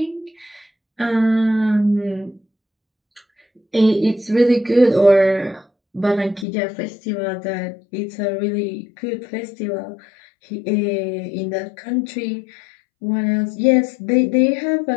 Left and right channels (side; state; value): right; drops out; at 6.5 s